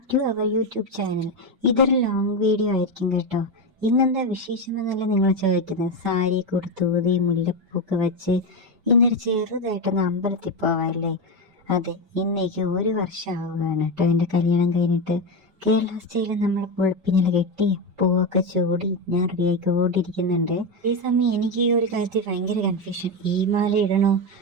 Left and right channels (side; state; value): left; late; 5.2 ms